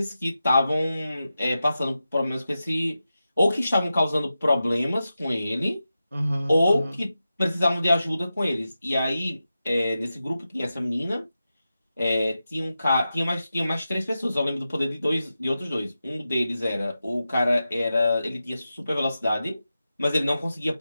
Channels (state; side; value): inverted; both; correlation -0.92